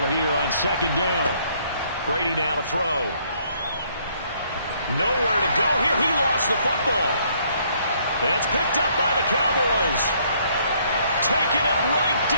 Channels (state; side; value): inverted; both; correlation -0.66